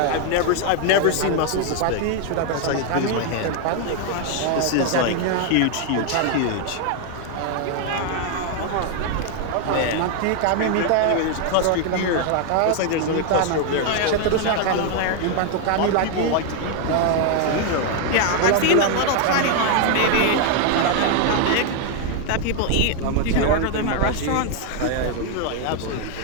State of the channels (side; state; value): both; different; correlation 0.01